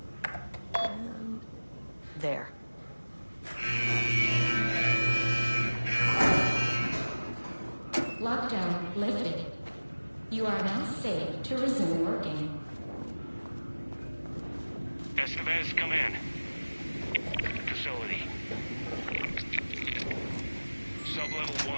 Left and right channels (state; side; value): inverted; both; correlation -1.00